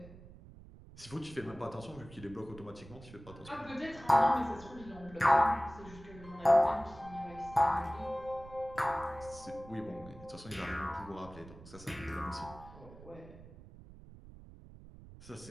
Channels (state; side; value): noise; right; rumble, 18 dB below the sound